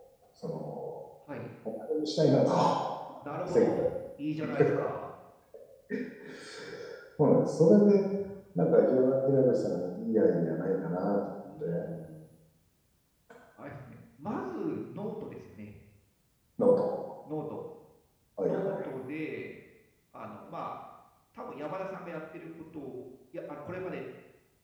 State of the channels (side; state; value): both; identical; correlation 1.00